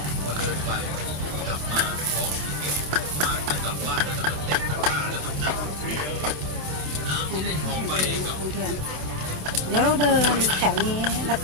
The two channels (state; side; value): late; left; 26 ms